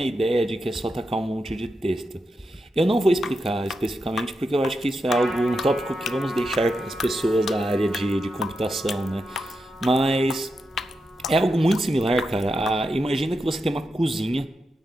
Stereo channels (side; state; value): both; normal; correlation 0.87